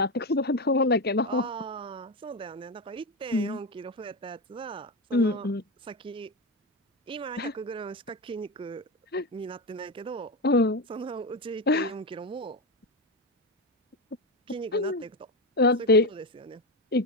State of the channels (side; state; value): both; normal; correlation 0.15